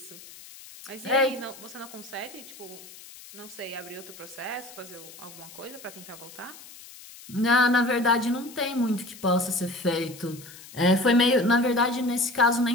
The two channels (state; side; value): noise; left; hiss, 18 dB below the sound